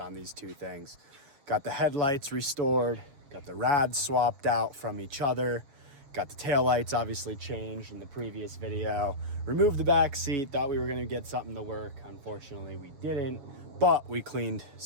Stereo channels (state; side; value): late; left; 6.9 ms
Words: these two things. Got the headlights restored, got the rads swapped out from each other, got the taillights obviously changed in the previous video, removed the back seat, thought we were gonna get something to work. Unfortunately, we didn't, but we cleaned